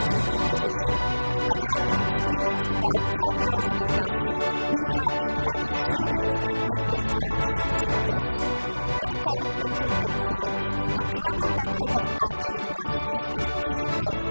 decision. And having an experience of about 10 years in the industry, we have been helping students make this transition seamless. With a commitment to excellence, a global network of partner universities, and a team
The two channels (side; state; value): both; inverted; correlation -1.00